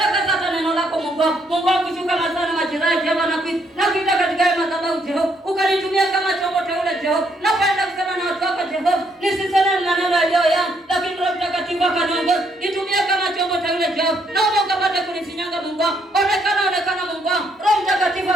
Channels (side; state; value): both; normal; correlation 0.72